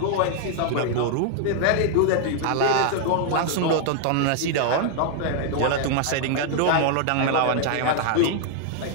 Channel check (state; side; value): different; both; correlation 0.00